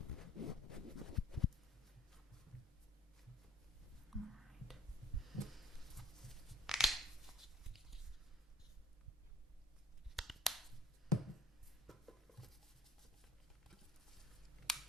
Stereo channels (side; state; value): both; normal; correlation 0.51